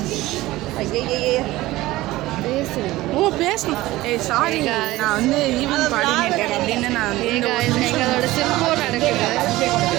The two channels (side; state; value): left; quieter; 17.7 dB